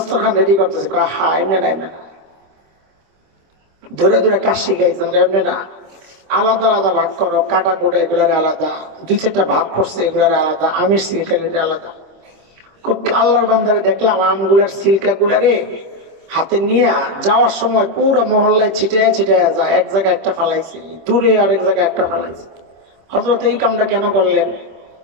রেডি করতেছি। হা, এমনি না, এমনি না, ধরে ধরে কাজ শিখাইছেন, এমনি না, আলাদা আলাদা ভাগ করো, কাটা কোটা এগুলারে আলাদা, দুই চারটা ভাগ করছে এগুলারে আলাদা, আমের সিলকা আলাদা। আল্লাহর বান্দারে দেখলাম আমগুলার সিলকা গুলারে হাতে নিয়ে যাওয়ার সময় পুরো মহল্লায় ছিটায় ছিটায় যায়, এক জায়গায় একটা ফালাইছে, দূরে আরেক জায়গায় একটা ফালাইছে। হযরত এই কামটা কেন করলেন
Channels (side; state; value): left; late; 26 ms